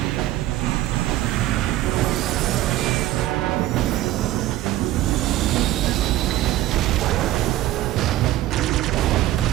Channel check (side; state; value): left; quieter; 15.0 dB